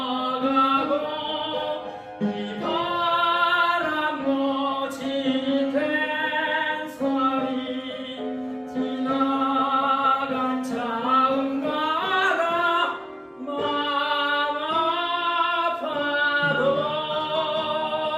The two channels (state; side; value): identical; both; correlation 1.00